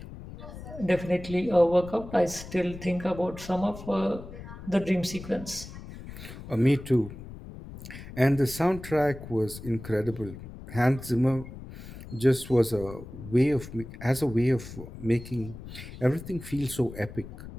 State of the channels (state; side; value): noise; left; rumble, 13 dB below the sound